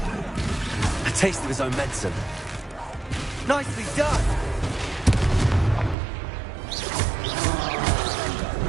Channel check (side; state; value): left; drops out; at 6.0 s